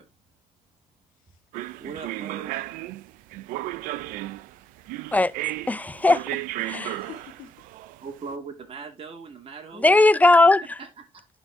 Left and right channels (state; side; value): normal; both; correlation 0.79